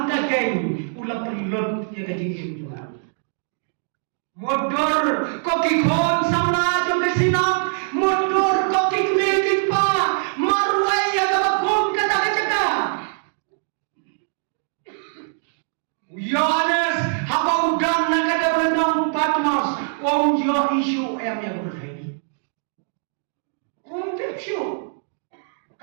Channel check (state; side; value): silent; left; digital silence